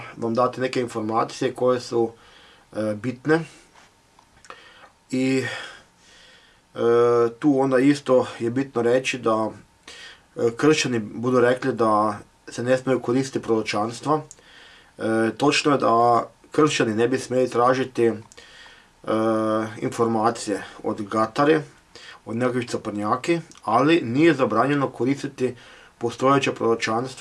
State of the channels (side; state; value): both; identical; correlation 1.00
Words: vam dati neke informacije koje su bitne. I tu onda isto je bitno reći da kršćani budu rekli da se ne smiju koristiti proročanstva. Točno je da kršćani ne bi smjeli tražiti informacije od gatare, od nekakvih caprnjaki, ali nije zabranjeno koristiti postojeća